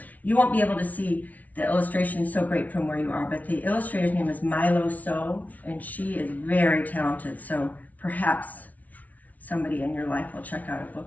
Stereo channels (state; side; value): late; right; 0.073 ms